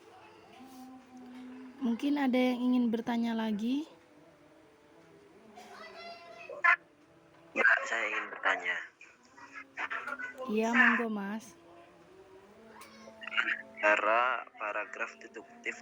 Mungkin ada yang ingin bertanya lagi? Ya, saya ingin bertanya. Iya, monggo Mas. Cara paragraf deduktif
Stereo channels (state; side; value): identical; both; correlation 1.00